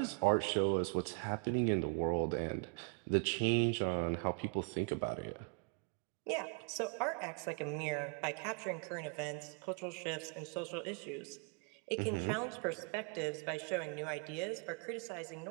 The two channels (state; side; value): quieter; left; 39.2 dB